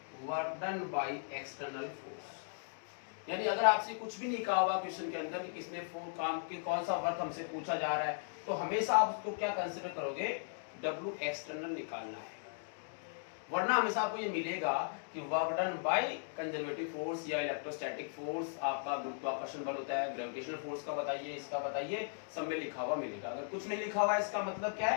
work done by external force. यानी अगर आपसे कुछ भी नहीं कहा हुआ क्वेश्चन के अंदर कि किसने काम के कौन सा वर्क हमसे पूछा जा रहा है, तो हमेशा आप उसको क्या कंसीडर करोगे, W एक्सटर्नल निकालना है। वरना हमेशा आपको ये मिलेगा कि work done by conservative force या इलेक्ट्रोस्टैटिक फोर्स, आपका गुरुत्वाकर्षण बल होता है, ग्रेविटेशनल फोर्स का बताइए, इसका बताइए, सब में लिखा हुआ मिलेगा। अगर कुछ नहीं लिखा हुआ है इसका मतलब क्या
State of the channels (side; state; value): right; silent; digital silence